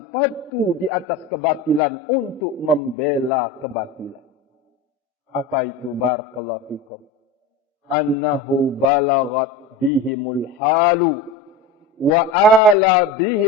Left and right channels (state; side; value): quieter; right; 3.1 dB